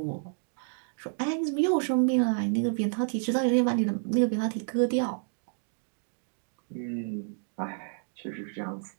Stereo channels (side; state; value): left; silent; digital silence